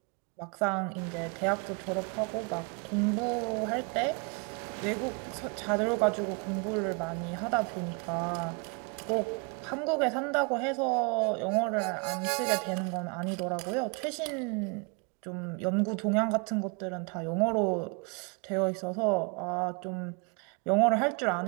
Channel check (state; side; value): quieter; left; 33.4 dB